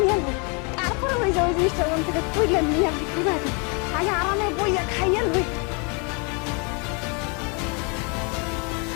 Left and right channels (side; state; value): right; quieter; 33.9 dB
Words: নিয়ে আনবো, তারপরে ওই যে ওই জিনিসটা ওখান থেকে তুইলে নিয়ে বিক্রি করে দেবো। আগে আরামে বইয়া খাইয়ে লই।